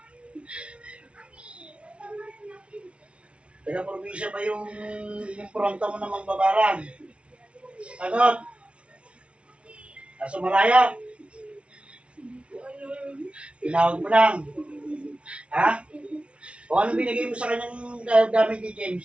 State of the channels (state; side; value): late; left; 0.060 ms